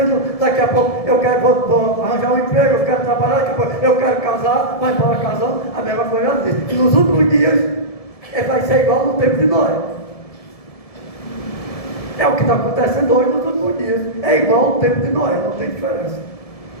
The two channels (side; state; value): right; late; 1.7 ms